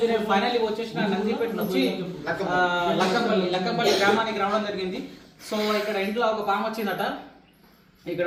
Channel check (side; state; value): both; identical; correlation 1.00